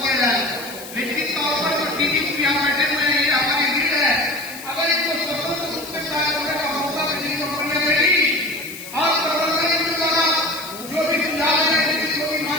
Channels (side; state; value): left; noise; hiss, 14 dB below the sound